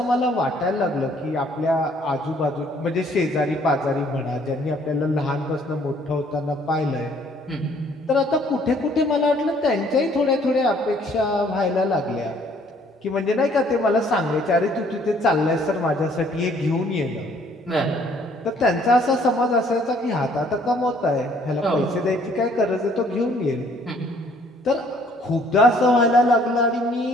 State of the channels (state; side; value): normal; both; correlation 0.61